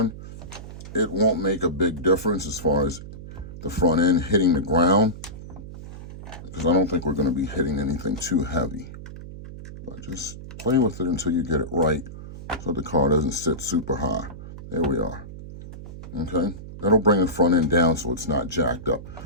it won't make a big difference as far as the front end hitting the ground, because I don't think we're going to be hitting anything too heavy. But just play with it until you get it right so the car doesn't sit super high. There we are. Okay? That'll bring the front end down so it's not jacked up.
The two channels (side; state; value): right; noise; hum, 13 dB below the sound